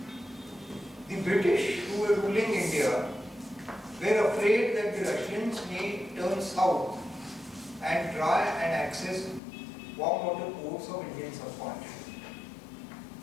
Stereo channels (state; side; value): drops out; right; at 9.4 s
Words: The British, who were ruling India, were afraid that the Russians may turn south and try and access warm water ports of Indian subcontinent.